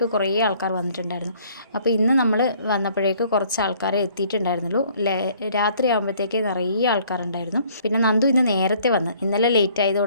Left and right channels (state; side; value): inverted; both; correlation -0.59